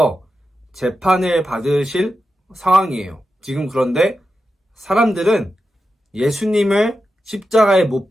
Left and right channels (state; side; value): normal; both; correlation 0.90